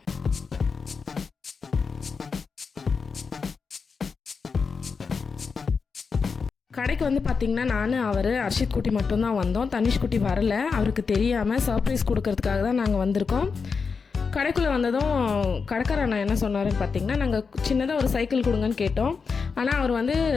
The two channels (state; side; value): quieter; right; 5.3 dB